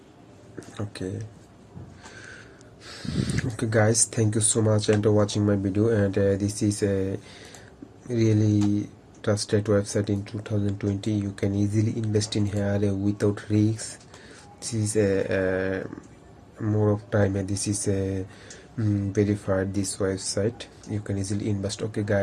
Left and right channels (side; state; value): both; identical; correlation 1.00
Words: Okay guys, thank you so much and watching my video. And this is a really trusted website in 2020. You can easily invest in here without risks. This is a more of time, and this is a verified this website. You can easily invest. Okay